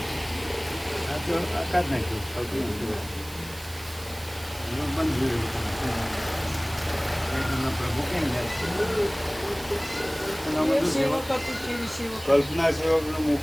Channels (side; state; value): right; noise; hiss, 17 dB below the sound